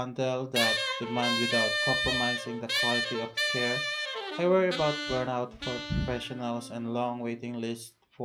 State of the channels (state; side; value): identical; both; correlation 1.00